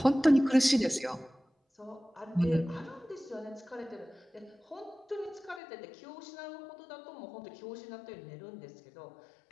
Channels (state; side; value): drops out; right; at 5.6 s